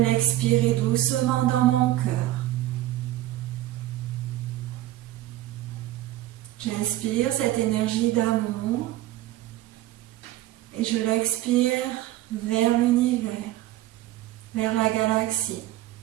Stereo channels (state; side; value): quieter; left; 15.2 dB